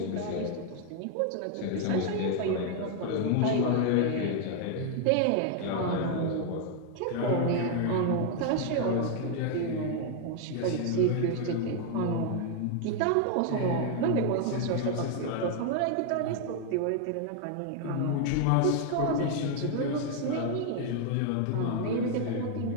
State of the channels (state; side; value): different; both; correlation 0.00